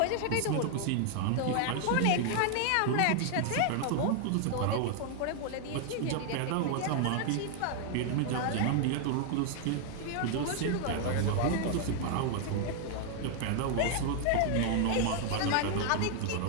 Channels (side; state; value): both; different; correlation 0.00